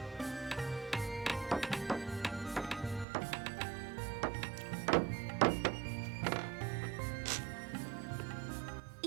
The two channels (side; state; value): left; drops out; at 3.1 s